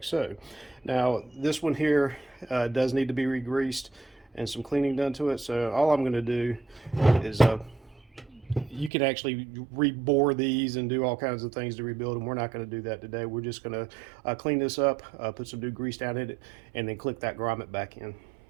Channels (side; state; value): left; drops out; at 8.9 s